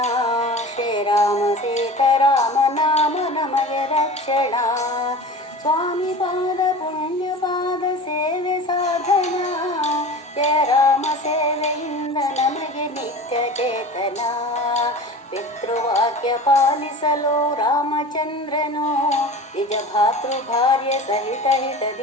ಶ್ರೀರಾಮ ಸೀತಾರಾಮ ನಾಮ ನಮಗೆ ರಕ್ಷಣಾ. ಸ್ವಾಮಿ ಪಾದ ಪುಣ್ಯ ಪಾದ ಸೇವೆ ಸಾಧನ, ಜಯ ರಾಮ ಸೇವೆಯಿಂದ ನಮಗೆ ನಿತ್ಯ ಚೇತನ. ಪಿತೃವಾಕ್ಯ ಪಾಲಿಸಲು ರಾಮಚಂದ್ರನು, ನಿಜ ಭಾತೃ ಭಾರ್ಯ ಸಹಿತ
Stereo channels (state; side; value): normal; both; correlation 0.36